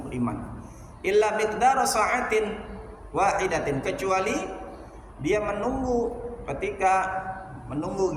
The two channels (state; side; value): identical; both; correlation 1.00